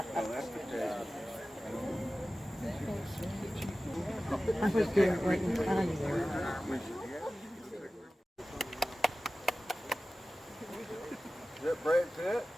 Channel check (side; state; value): both; normal; correlation 0.95